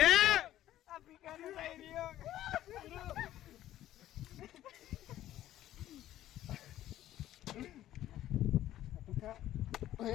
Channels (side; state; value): right; quieter; 13.2 dB